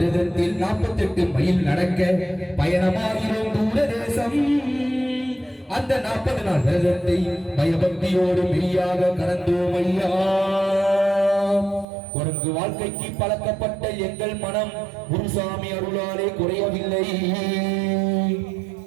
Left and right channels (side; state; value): left; drops out; at 11.9 s